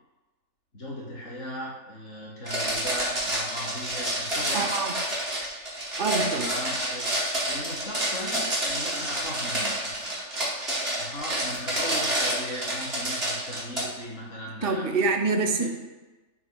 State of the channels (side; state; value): right; late; 3.4 ms